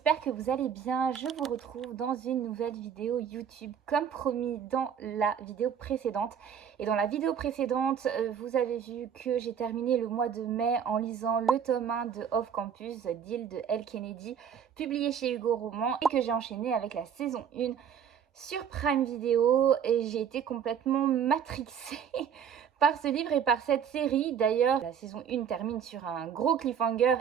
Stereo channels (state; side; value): quieter; left; 7.9 dB